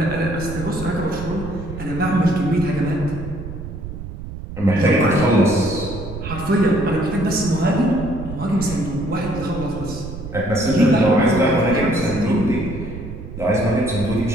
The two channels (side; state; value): right; noise; rumble, 10 dB below the sound